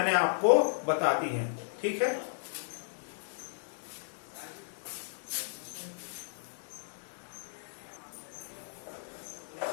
आपको बता दी हैं। ठीक है,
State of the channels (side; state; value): right; silent; 55 dB below the other